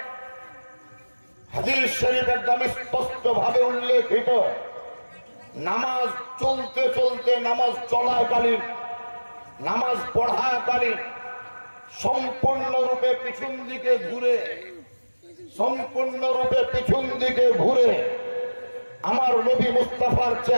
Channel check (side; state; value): both; inverted; correlation -1.00